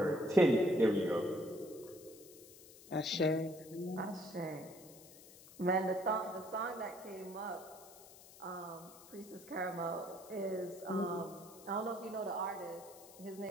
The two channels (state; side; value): noise; left; hiss, 20 dB below the sound